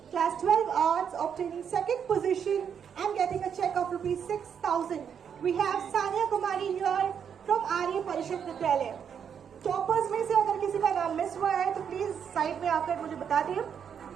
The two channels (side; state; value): left; quieter; 7.7 dB